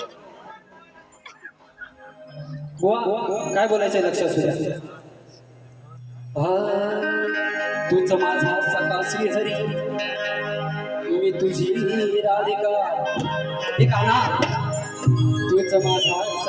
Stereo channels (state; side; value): identical; both; correlation 1.00